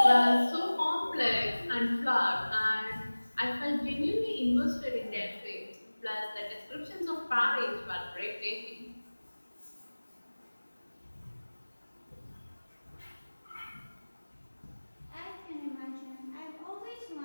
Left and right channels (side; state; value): both; inverted; correlation -1.00